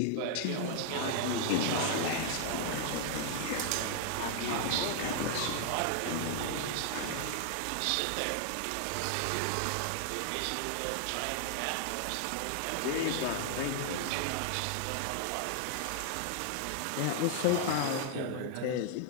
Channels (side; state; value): both; different; correlation 0.00